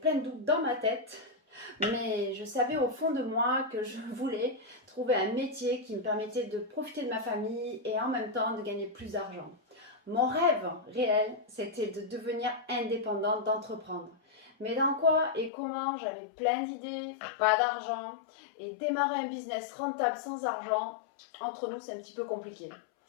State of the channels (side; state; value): right; drops out; at 15.5 s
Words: de doutes dans ma tête. Mais je savais au fond de moi que je voulais trouver un métier qui me permettait de profiter de ma famille et en même temps de gagner plus d'argent. Mon rêve réel, c'était de devenir indépendante, d'entreprendre. Mais dans quoi et comment, j'avais plein d'idées, pas d'argent, et démarrer un business rentable sans argent, entre nous, c'est un petit peu compliqué.